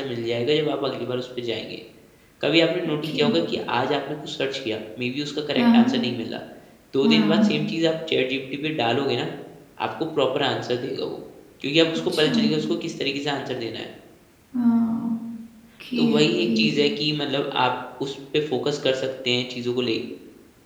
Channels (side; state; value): both; identical; correlation 1.00